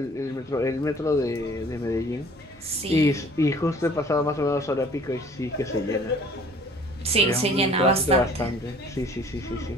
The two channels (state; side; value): normal; both; correlation 0.52